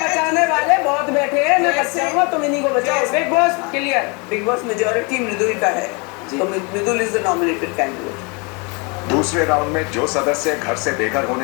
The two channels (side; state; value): right; quieter; 31.1 dB